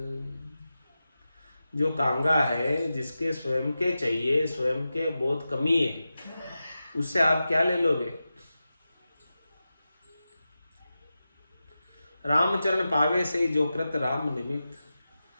जो कांगा है, जिसके स्वयं के चाहिए, स्वयं के बहुत कमी है, उससे आप क्या ले लोगे? रामचरण पावे से जो कृत राम निमित्त।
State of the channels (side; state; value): both; inverted; correlation -0.93